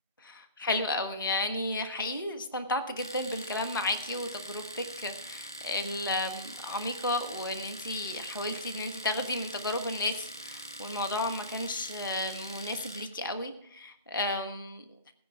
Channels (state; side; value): inverted; both; correlation -0.33